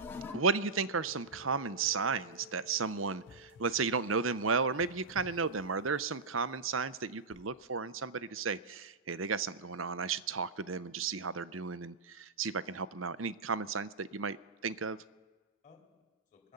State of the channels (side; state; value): left; quieter; 4.5 dB